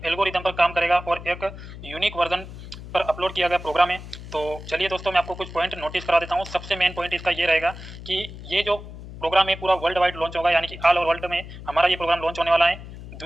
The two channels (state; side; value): noise; left; hum, 13 dB below the sound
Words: एल्गोरिदम पर काम करेगा और एक यूनिक वर्जन पर अपलोड किया गया प्रोग्राम है। तो चलिए दोस्तों, मैं आपको कुछ पॉइंट नोटिस करा देता हूँ। सबसे मेन पॉइंट इसका ये रहेगा कि ये जो प्रोग्राम है पूरा वर्ल्ड वाइड लॉन्च होगा, यानी कि ऑल ओवर वर्ल्ड में हमारा ये प्रोग्राम लॉन्च होने वाला है।